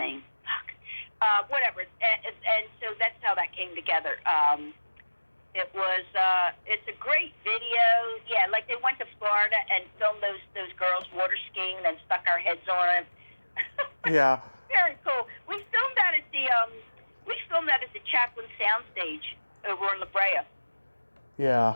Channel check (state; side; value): inverted; both; correlation -1.00